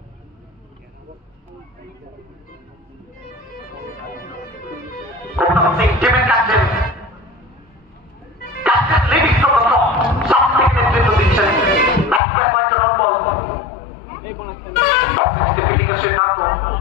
টিমের captain leading from the top, south থেকে নেতৃত্ব দিচ্ছেন। ব্যাটসম্যান কয়েকটা নট বল ফিল্ডিং এর সিদ্ধান্ত,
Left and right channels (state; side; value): drops out; right; at 12.2 s